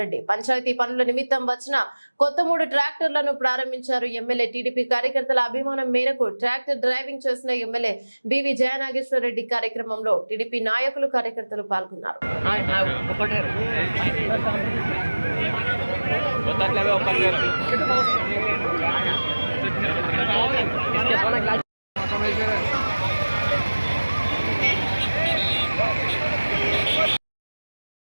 రెడ్డి. పంచాయతీ పనుల నిమిత్తం వచ్చిన కొత్త 3 ట్రాక్టర్లను ప్రారంభించారు ఎమ్మెల్యే. టీడీపీ కార్యకర్తల అభిమానం మేరకు ట్రాక్టర్ డ్రైవింగ్ చేసిన ఎమ్మెల్యే బివి జయనాగేశ్వర రెడ్డి కార్యక్రమంలో టీడీపీ నాయకులు కార్యకర్తలు పాల్గొన్నారు.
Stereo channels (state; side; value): inverted; both; correlation -1.00